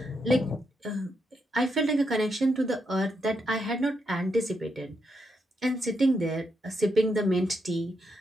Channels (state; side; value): normal; both; correlation 0.81